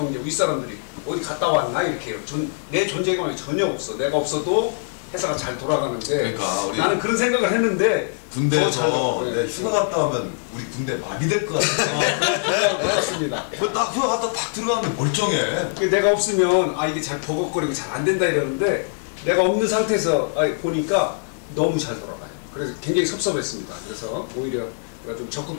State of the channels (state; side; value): silent; right; 64 dB below the other